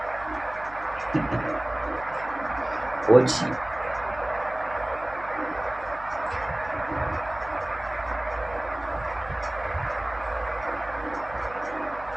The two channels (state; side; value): noise; right; hum, 17 dB below the sound